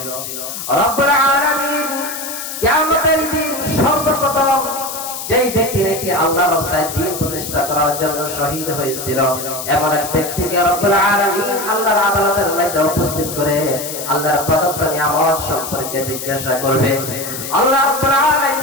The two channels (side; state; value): left; noise; hiss, 7 dB below the sound